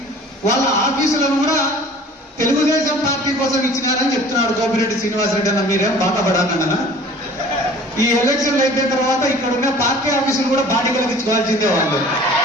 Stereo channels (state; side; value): normal; both; correlation 0.47